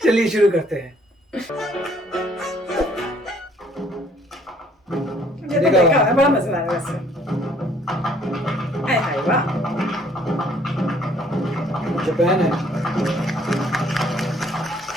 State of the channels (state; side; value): normal; both; correlation 0.62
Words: चलिए शुरू करते हैं। ये तो देखा है, बड़ा मजा आया वैसे। हाय हाय वाह, जापान है।